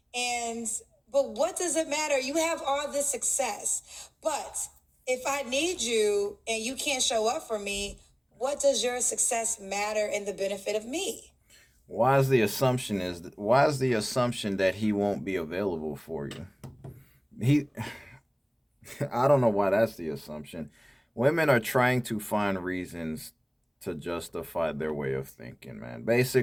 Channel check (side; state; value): both; identical; correlation 1.00